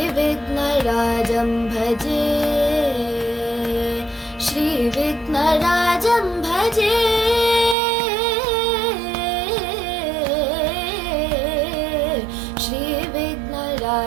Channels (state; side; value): drops out; left; at 7.8 s